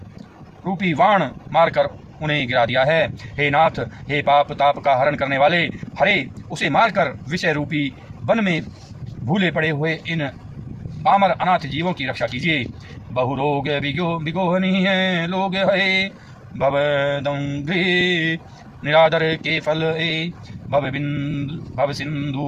रूपी वाण मारकर उन्हें गिरा दिया है। हे नाथ, हे पाप ताप का हरण करने वाले हरे, उसे मारकर विषय रूपी वन में भूले पड़े हुए इन पामर अनाथ जीवों की रक्षा कीजिए। बहु रोग बिगोहनी है लोग है भवदंघ्रे निरादर के फल ए भव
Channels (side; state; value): both; identical; correlation 1.00